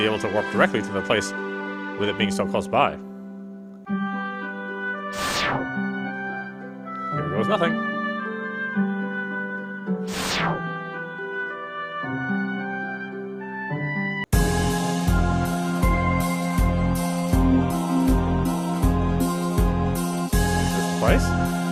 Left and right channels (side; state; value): both; identical; correlation 1.00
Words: able to warp directly to the place with it being so close by. Here goes nothing. Is this the place?